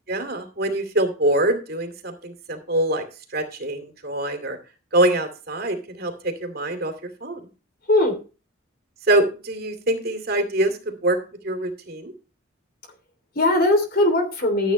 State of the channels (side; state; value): both; normal; correlation 0.07